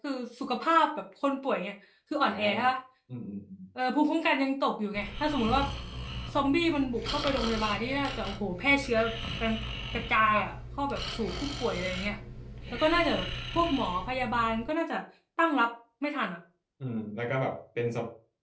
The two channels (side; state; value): both; identical; correlation 1.00